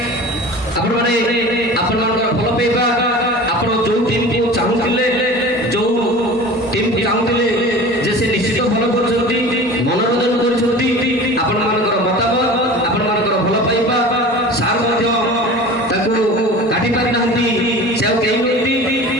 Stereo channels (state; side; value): normal; both; correlation 0.37